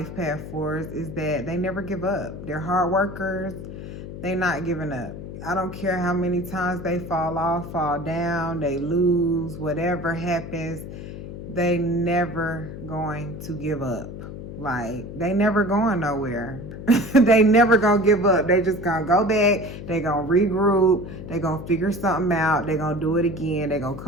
path 4s is that they never give up. They're hard workers. They're not giving up. I don't care how many times they fall off, fall down, they lose, whatever happens, they never going to give up. Like, they never going nowhere. They never gonna give up. They just gonna go back. They gonna regroup. They gonna figure something out. They gonna do it again. They gonna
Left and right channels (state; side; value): noise; left; hum, 10 dB below the sound